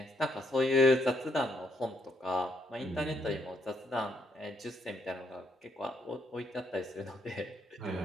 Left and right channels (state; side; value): normal; both; correlation 0.72